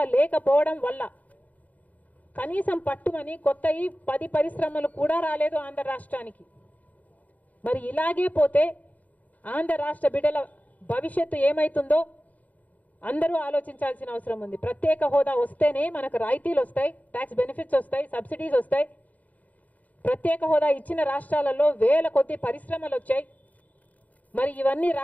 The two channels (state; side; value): late; right; 0.075 ms